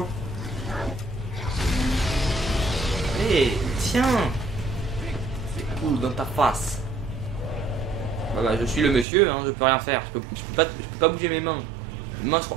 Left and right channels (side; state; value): left; drops out; at 9.1 s